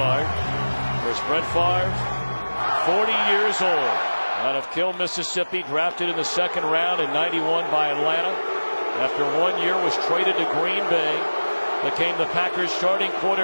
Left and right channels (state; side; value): inverted; both; correlation -1.00